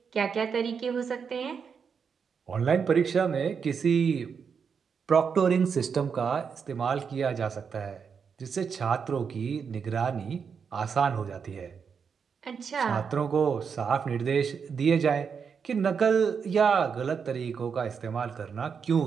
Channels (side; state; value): left; quieter; 6.3 dB